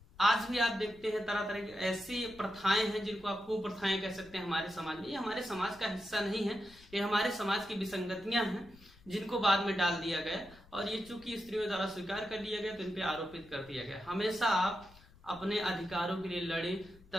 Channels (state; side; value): noise; left; rumble, 24 dB below the sound